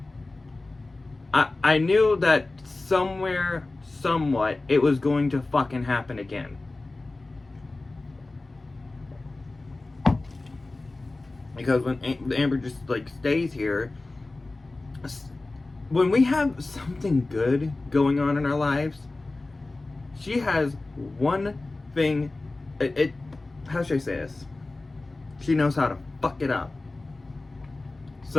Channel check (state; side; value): quieter; right; 3.1 dB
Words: I knew that somewhere, somewhat, it was going to fucking happen again. Because when Amber just, stays here, when we have something good going on in our lives, she has one thing, how should I say this? She knows how to fuck it up.